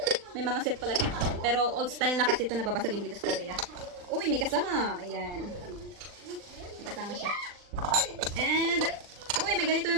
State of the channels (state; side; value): late; left; 39 ms